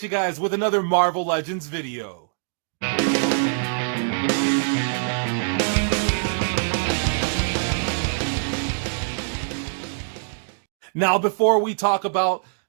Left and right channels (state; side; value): silent; left; digital silence